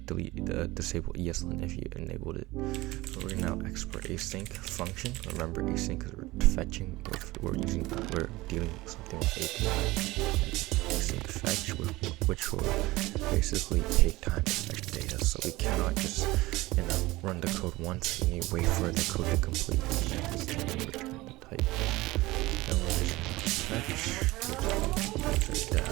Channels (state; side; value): quieter; left; 19.7 dB